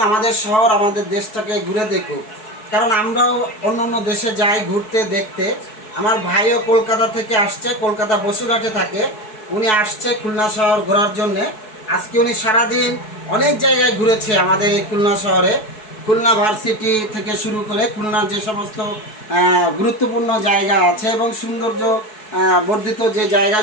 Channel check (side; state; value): right; late; 4.6 ms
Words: আমাদের শহর আমাদের দেশটাকে ঘুরে দেখুক। কারণ আমরাও অন্য অন্য দেশে যাই ঘুরতে দেখতে। আমার ভাইও কলকাতা থেকে আসছে, কলকাতা বসুরহাটে থাকে। উনি আসছে খুলনা শহর ঘোরার জন্যে। আজকে উনি সারাদিন অনেক জায়গায় ঘুরেছে আমাদের এই খুলনা শহরে। খুলনা ভার্সিটি থেকে শুরু করে খুলনার যে সমস্ত গুরুত্বপূর্ণ জায়গা আছে এবং সৌন্দর্য বর্ধিত যে